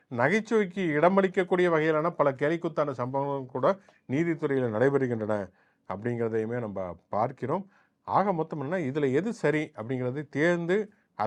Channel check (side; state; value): both; identical; correlation 1.00